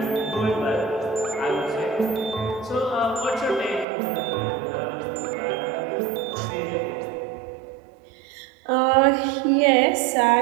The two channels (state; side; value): drops out; left; at 3.9 s